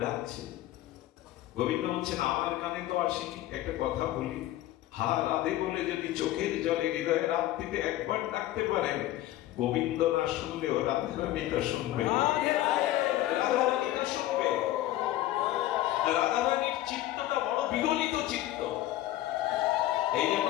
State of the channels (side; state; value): right; quieter; 14.7 dB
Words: ডাকছে। গোবিন্দ বলছেন, আমার কানে তো আসেনি, একটা কথা বলি, হা রাধে বলে যদি চোখের জলে হৃদয়ের আরতিতে একবার ডাকতে পারেন, গোবিন্দ না শুনলেও রাধারানীটা শুনবে, রাধারানীটা শুনবে। রাধারানীর চিত্তটা বড় বিগলিত চিত্ত। এই জন্য